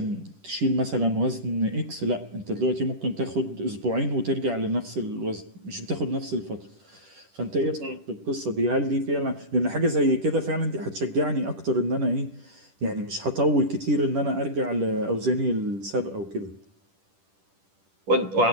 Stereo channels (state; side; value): late; left; 10 ms